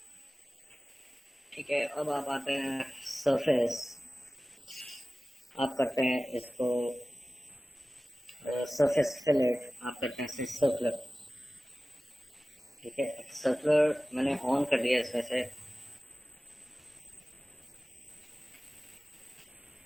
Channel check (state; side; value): normal; both; correlation 0.97